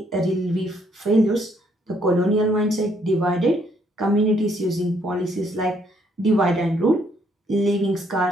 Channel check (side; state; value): both; normal; correlation 0.69